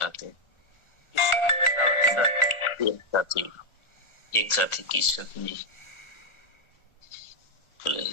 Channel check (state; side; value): late; right; 1.4 ms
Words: हैं। एक साथी किशन जी तो ले